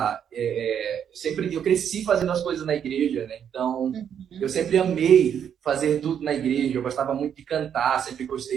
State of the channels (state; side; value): quieter; left; 8.6 dB